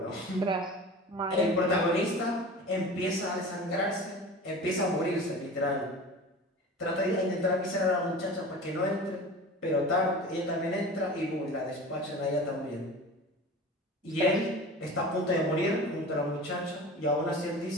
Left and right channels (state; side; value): normal; both; correlation 0.36